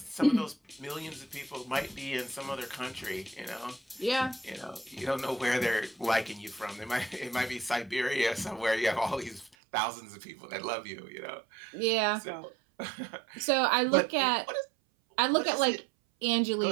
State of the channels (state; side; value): drops out; left; at 9.6 s